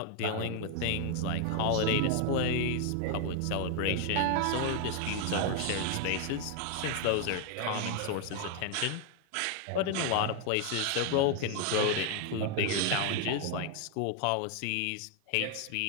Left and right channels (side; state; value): both; different; correlation 0.01